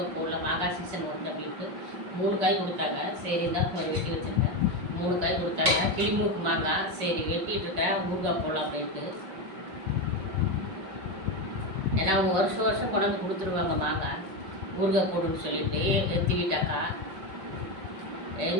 போடல, மாங்காய் சீசன் வந்து அப்படின்ட்டு 3 காய் கொடுத்தாங்க. சரி தான் கொஞ்சம் வெட்டி வச்சுருக்கேன். 3 காய் கொடுத்தாங்க. கிளிமூக்கு மாங்காய் சரி வெட்டிகிட்டு இருக்கேன், ஊறுகாய் போடலாம் அப்படின்ட்டு. ஏன்னா அவங்க வருஷம் கொண்டாந்து கொடுத்துருவாங்க மாங்காய் ஊறுகாய் போடுன்னு சொல்லிட்டு எத்தி வீட்டாக்கா.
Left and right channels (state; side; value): late; left; 5.4 ms